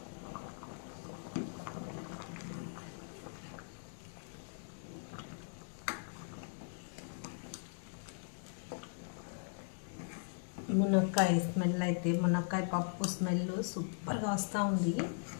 మునక్కాయ స్మెల్ అయితే, మునక్కాయ పప్పు స్మెల్ సూపర్గా వస్తూ ఉంది.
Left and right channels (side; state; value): right; silent; digital silence